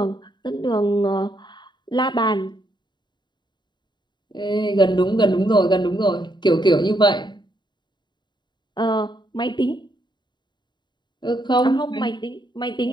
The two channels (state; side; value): late; right; 0.22 ms